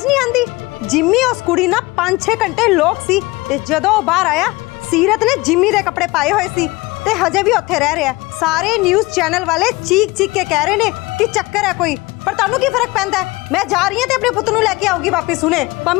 ਨਹੀਂ ਆਂਦੀ ਜਿੰਮੀ ਉਸ ਕੁੜੀ ਨਾਲ 5-6 ਘੰਟੇ ਲੋਕ ਸੀ ਤੇ ਜਦੋਂ ਉਹ ਬਾਹਰ ਆਇਆ ਸੀਰਤ ਨੇ ਜਿੰਮੀ ਦੇ ਕੱਪੜੇ ਪਾਏ ਹੋਏ ਸੀ ਤੇ ਹਜੇ ਵੀ ਉੱਥੇ ਰਹਿ ਰਿਹਾ ਸਾਰੇ ਨਿਊਜ਼ ਚੈਨਲ ਵਾਲੇ ਚੀਕ ਚੀਕ ਕੇ ਕਹਿ ਰਹੇ ਨੇ ਕਿ ਚੱਕਰ ਹੈ ਕੋਈ ਪਰ ਤੁਹਾਨੂੰ ਕੀ ਫਰਕ ਪੈਂਦਾ ਮੈਂ ਜਾ ਰਹੀ ਹਾਂ ਤੇ ਆਪਣੇ ਪੁੱਤ ਨੂੰ ਲੈ ਕੇ ਆਊਗੀ ਵਾਪਸ ਹੁਣੇ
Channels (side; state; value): right; quieter; 22.2 dB